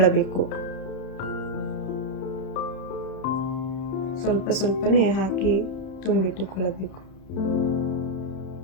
ಸ್ವಲ್ಪನೇ ಹಾಕಿ ತುಂಬಿಟ್ಟುಕೊಳ್ಳಬೇಕು.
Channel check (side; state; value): right; late; 31 ms